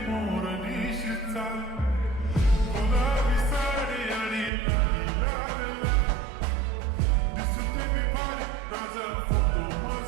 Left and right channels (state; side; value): drops out; left; at 4.5 s